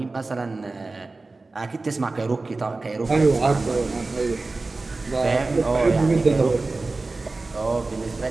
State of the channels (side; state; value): left; quieter; 3.5 dB